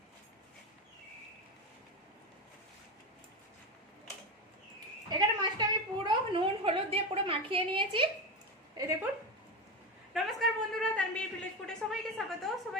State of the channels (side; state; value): both; normal; correlation 0.19